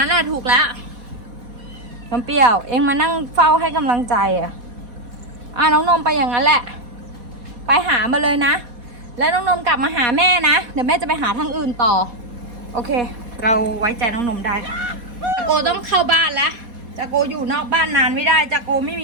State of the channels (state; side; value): late; left; 4.1 ms